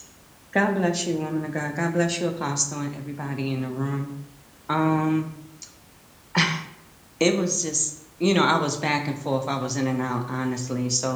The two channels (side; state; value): both; identical; correlation 1.00